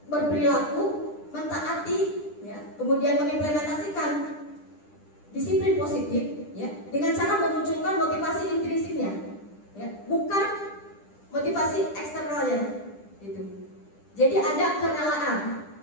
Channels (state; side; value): late; right; 10 ms